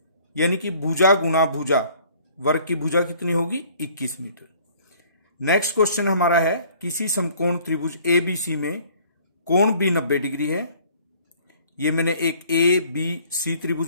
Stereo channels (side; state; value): both; inverted; correlation -0.56